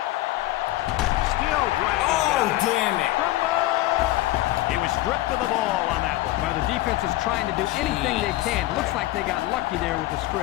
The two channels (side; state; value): right; quieter; 16.9 dB